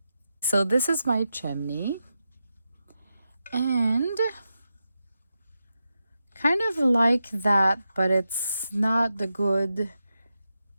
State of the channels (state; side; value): inverted; both; correlation -0.89